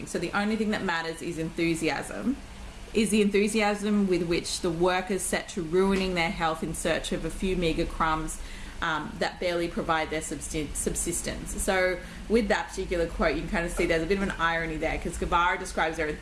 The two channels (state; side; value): identical; both; correlation 1.00